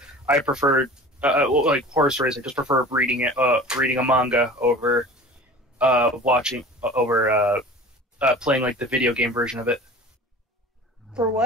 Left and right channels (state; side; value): normal; both; correlation 0.41